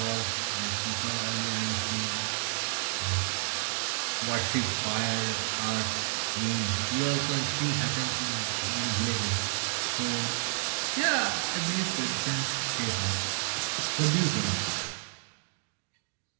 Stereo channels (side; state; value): left; silent; digital silence